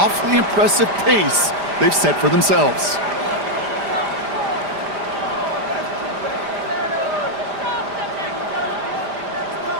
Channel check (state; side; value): late; left; 5.0 ms